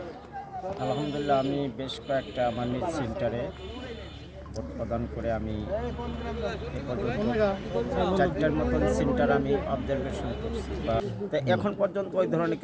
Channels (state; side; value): identical; both; correlation 1.00